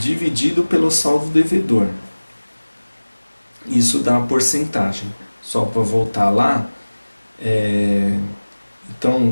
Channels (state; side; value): inverted; both; correlation -1.00